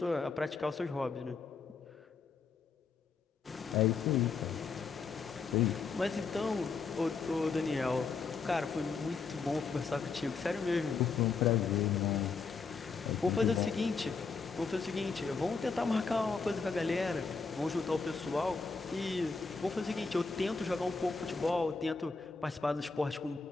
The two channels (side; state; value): right; quieter; 4.8 dB